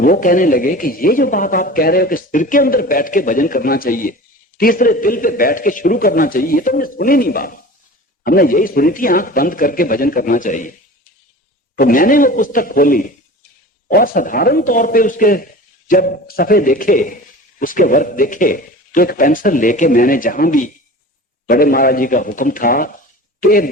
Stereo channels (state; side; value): normal; both; correlation 0.37